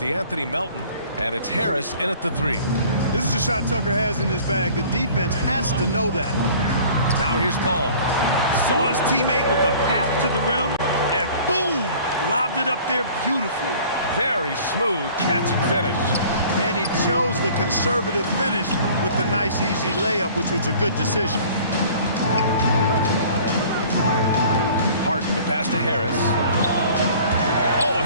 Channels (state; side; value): inverted; both; correlation -0.49